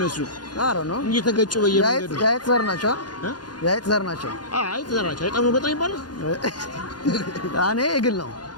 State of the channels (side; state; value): right; late; 0.70 ms